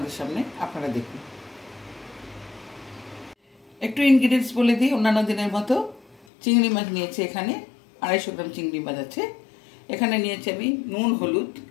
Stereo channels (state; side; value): drops out; right; at 6.2 s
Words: সামনে, আপনারা দেখুন। একটু ইনগ্রিডিয়েন্টস বলে দিই। অন্যান্য দিনের মতো চিংড়ি মাছ নিয়েছি, এখানে 250 গ্রাম চিংড়ি মাছ আছে। এখানে নিয়েছি আমি নুন, হলুদ,